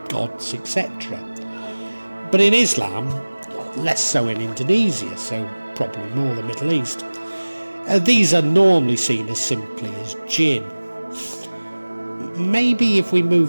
gods, etc. But in Islam, less so in Indonesia, so probably more the Middle East, these are normally seen as simply as jinn. Maybe if we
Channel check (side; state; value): both; inverted; correlation -1.00